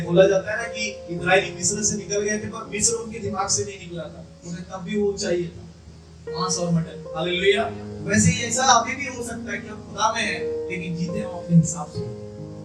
बोला जाता है ना कि इस्राएली मिस्र से निकल गए थे, पर मिस्र उनके दिमाग से नहीं निकला था, उन्हें तब भी वो चाहिए था, मांस और मटन। हालेलुया। वैसे ही ऐसा अभी भी हो सकता है कि हम खुदा में हैं लेकिन जीते हम अपने हिसाब से।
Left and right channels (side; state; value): both; identical; correlation 1.00